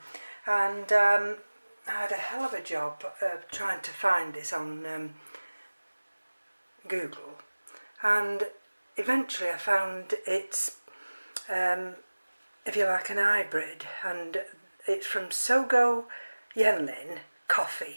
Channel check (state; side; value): inverted; both; correlation -1.00